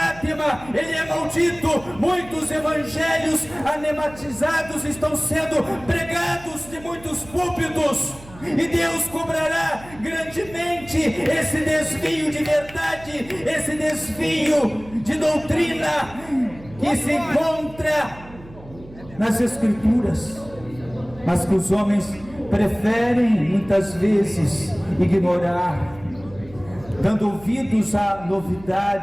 ele é maldito. Muitos evangelhos anematizados estão sendo pregados de muitos púlpitos, e Deus cobrará grandemente esse desvio de verdade, esse desvio de doutrina que se encontra nas Escrituras, mas que os homens preferem muitas vezes ignorar, dando ouvidos a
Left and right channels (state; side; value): noise; right; hum, 19 dB below the sound